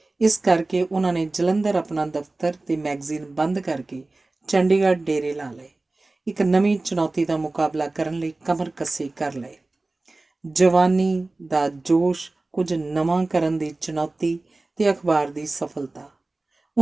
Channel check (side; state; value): left; quieter; 3.1 dB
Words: ਇਸ ਕਰਕੇ ਉਹਨਾਂ ਨੇ ਜਲੰਧਰ ਆਪਣਾ ਦਫ਼ਤਰ ਤੇ ਮੈਗਜ਼ੀਨ ਬੰਦ ਕਰਕੇ ਚੰਡੀਗੜ੍ਹ ਡੇਰੇ ਲਾ ਲਏ। ਇੱਕ ਨਵੀਂ ਚੁਣੌਤੀ ਦਾ ਮੁਕਾਬਲਾ ਕਰਨ ਲਈ ਕਮਰ ਕੱਸੇ ਕਰ ਲਏ। ਜਵਾਨੀ ਦਾ ਜੋਸ਼, ਕੁਝ ਨਵਾਂ ਕਰਨ ਦੀ ਚੁਣੌਤੀ ਤੇ ਅਖਬਾਰ ਦੀ ਸਫਲਤਾ।